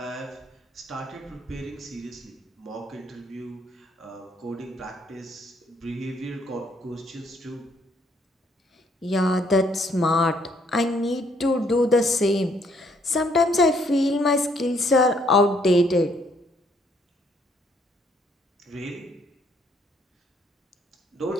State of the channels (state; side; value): normal; both; correlation 0.68